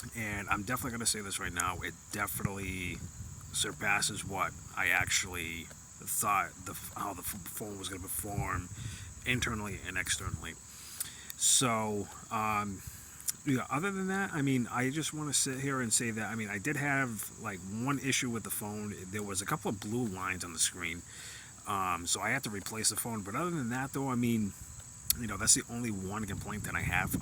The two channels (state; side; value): identical; both; correlation 1.00